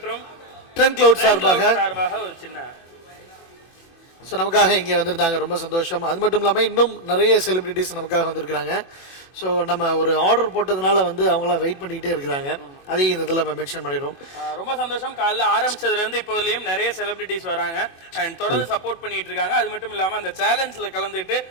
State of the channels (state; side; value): late; right; 24 ms